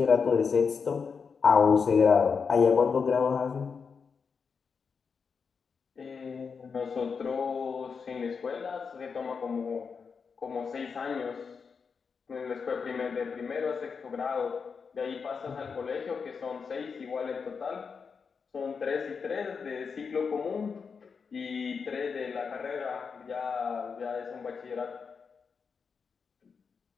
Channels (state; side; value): quieter; right; 5.6 dB